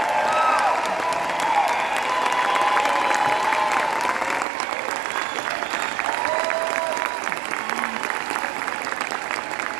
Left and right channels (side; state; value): left; drops out; at 4.5 s